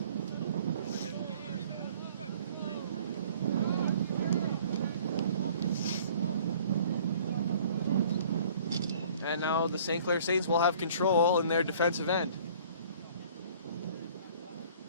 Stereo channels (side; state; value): both; inverted; correlation -0.52